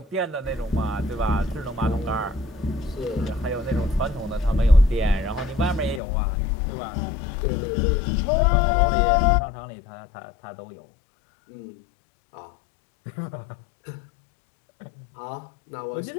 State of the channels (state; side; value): drops out; right; at 6.0 s